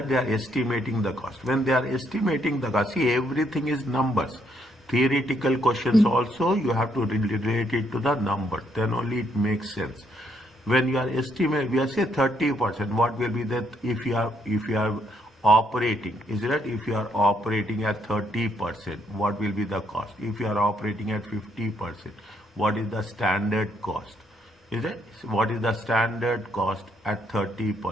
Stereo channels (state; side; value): normal; both; correlation 0.73